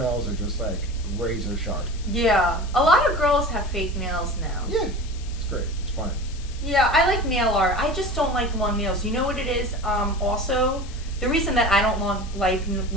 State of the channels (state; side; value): noise; left; hiss, 19 dB below the sound